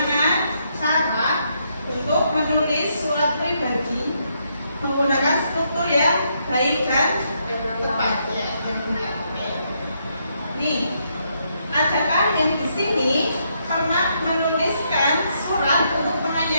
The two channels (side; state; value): both; inverted; correlation -0.76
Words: cara untuk menulis surat pribadi menggunakan struktur yang baik dan tepat ya, yang benar. Nih, adakah yang di sini pernah menuliskan surat untuk